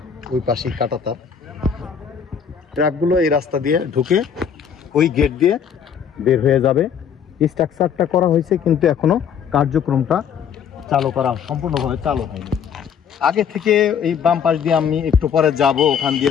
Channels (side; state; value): right; quieter; 7.7 dB